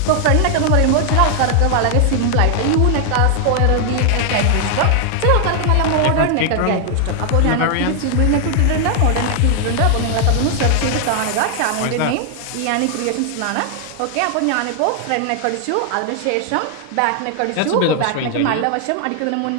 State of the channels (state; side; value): different; both; correlation 0.00